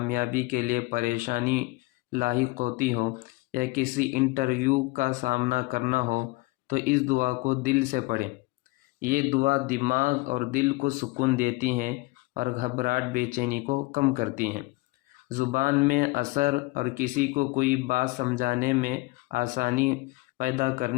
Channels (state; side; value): quieter; right; 22.5 dB